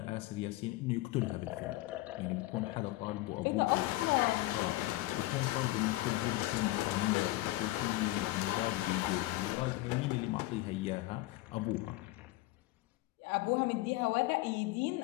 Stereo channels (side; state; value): right; quieter; 18.5 dB